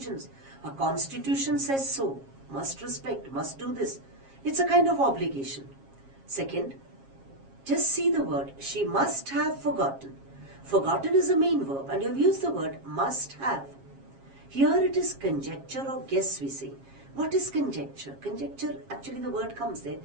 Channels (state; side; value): late; left; 7.4 ms